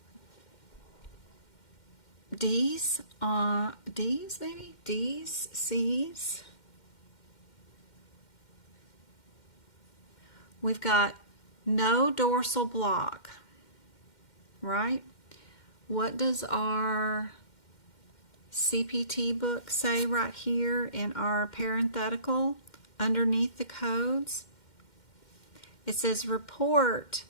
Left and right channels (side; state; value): right; late; 2.1 ms